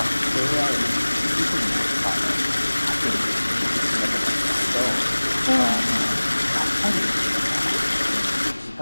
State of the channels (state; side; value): inverted; both; correlation -1.00